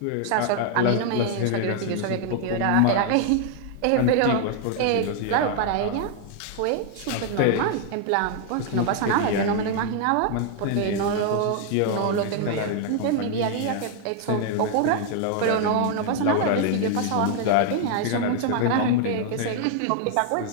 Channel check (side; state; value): both; different; correlation 0.00